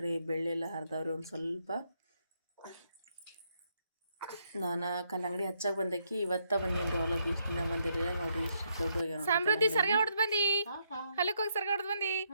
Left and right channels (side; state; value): both; inverted; correlation -0.76